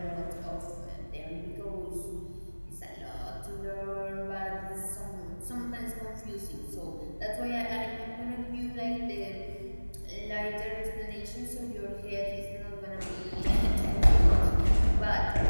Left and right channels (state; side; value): inverted; both; correlation -1.00